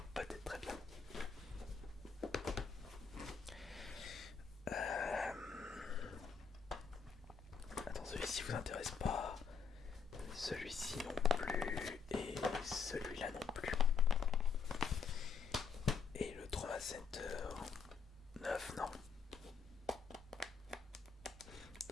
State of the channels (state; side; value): quieter; right; 5.8 dB